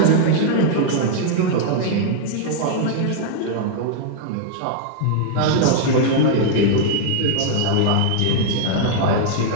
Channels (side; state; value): both; different; correlation -0.01